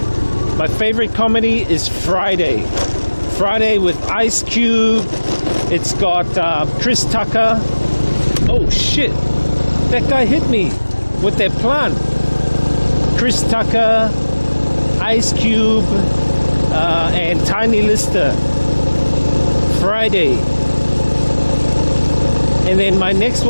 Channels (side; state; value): both; inverted; correlation -1.00